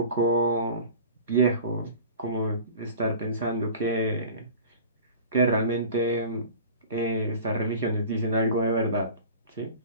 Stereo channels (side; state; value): both; inverted; correlation -0.40